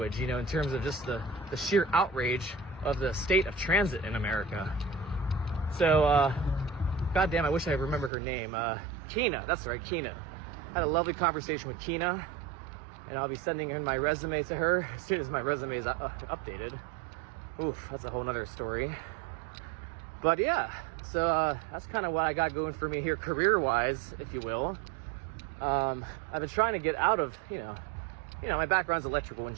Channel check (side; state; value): left; drops out; at 8.1 s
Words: you know, in terms of just the sheer outrage of the state of transit in America. So, goddamn, I wish I remember her name. Kina, that's right, Kina. Had a lovely conversation with Kina, and I'll be sending in my resume to her as soon as my resume is updated. Oof, that's a whole nother story. But yeah, so that's kind of what I got going for me here career-wise, if you will. I've been trying to get out of, you know, my background's electrical